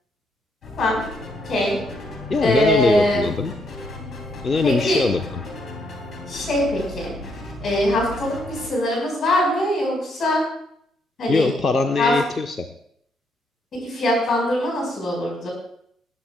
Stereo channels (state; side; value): normal; both; correlation 0.74